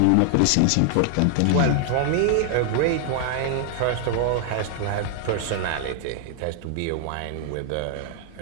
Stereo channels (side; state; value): both; different; correlation 0.00